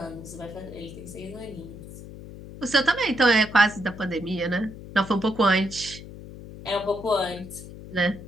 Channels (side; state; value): left; noise; hum, 14 dB below the sound